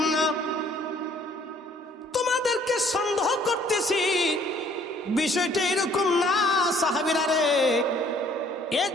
না। তোমাদেরকে সন্দেহ করতেছি, বিষয়টা এরকম না সাহাবীরা রে।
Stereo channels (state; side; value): normal; both; correlation 0.59